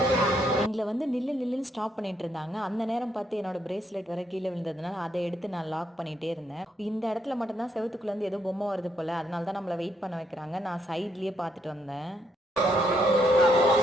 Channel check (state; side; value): normal; both; correlation 0.75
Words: எங்கள வந்து நில்லு நில்லுன்னு ஸ்டாப் பண்ணிட்டு இருந்தாங்க. அந்த நேரம் பார்த்து என்னோட பிரேஸ்லெட் வேற கீழ விழுந்ததுனால, அத எடுத்து நான் லாக் பண்ணிட்டே இருந்தேன். இந்த இடத்துல மட்டும் தான் செவுத்துக்குள்ள இருந்து ஏதோ பொம்மை வருது போல. அதனால தான் நம்மள வெயிட் பண்ண வைக்கிறாங்க. நான் சைட்லயே பார்த்துட்டு வந்தேன்.